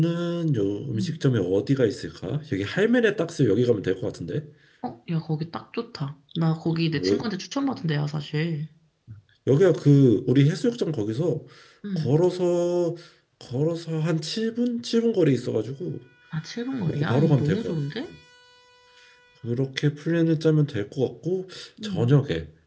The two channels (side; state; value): both; identical; correlation 1.00